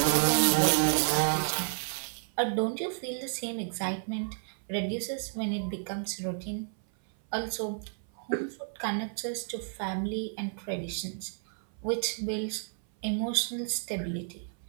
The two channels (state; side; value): silent; left; 56 dB below the other